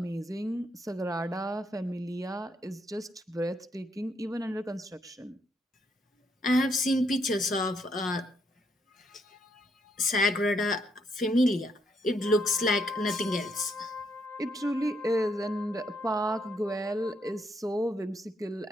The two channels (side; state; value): both; normal; correlation 0.75